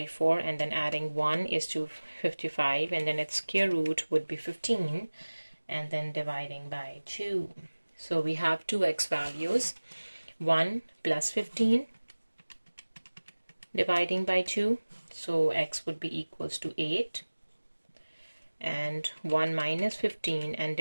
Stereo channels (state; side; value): inverted; both; correlation -1.00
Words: and then adding 1 is 255, and then its square root would be 15, and then dividing by 2. So we have two x values, 1 plus 15 dividing by 2, so x would be equals to 8, and 1 minus 15 and